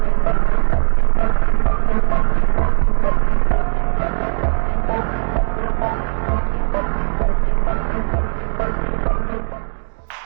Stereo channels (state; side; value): silent; left; digital silence